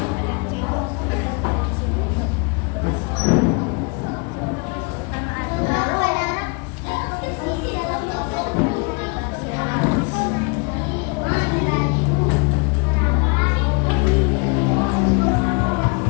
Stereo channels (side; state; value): right; quieter; 32.4 dB